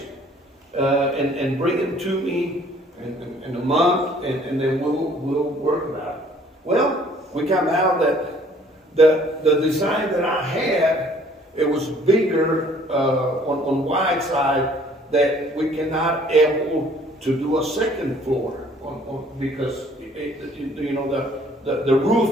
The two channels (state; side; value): normal; both; correlation 0.58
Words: and bring them to me in a month, and then we'll work about it. Well, we come out that the design that I had, it was bigger on wide side, that we cannot able to do a second floor because you know the